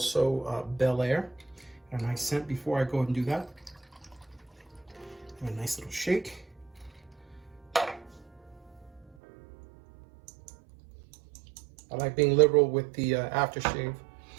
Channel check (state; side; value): drops out; left; at 9.1 s